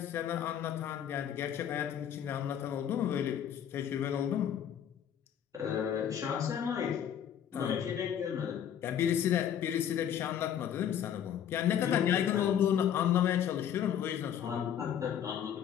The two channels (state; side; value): quieter; right; 9.4 dB